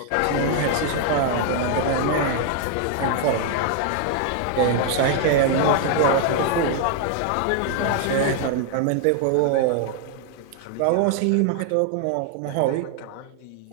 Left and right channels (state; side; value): different; both; correlation 0.00